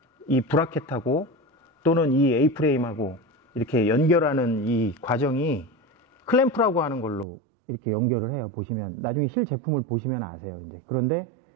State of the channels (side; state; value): left; drops out; at 7.2 s